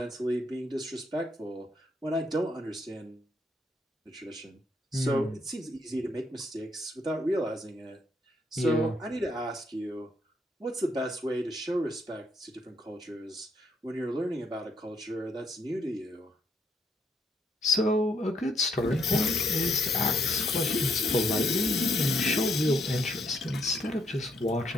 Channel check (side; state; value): both; normal; correlation 0.73